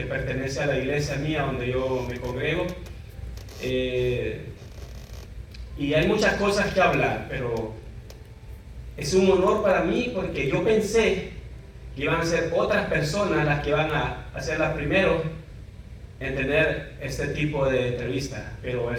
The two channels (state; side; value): identical; both; correlation 1.00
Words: pertenece a la iglesia mía donde yo me congrego. Y hay muchas cosas que hablar, pero es un honor para mí porque yo pensé que iban a ser otras personas las que van a ser las primeros en tener este tipo de entrevista. Pero